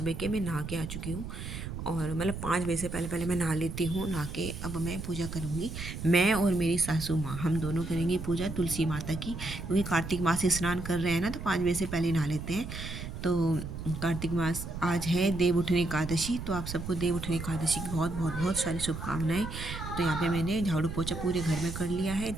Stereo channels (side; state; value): right; noise; rumble, 8 dB below the sound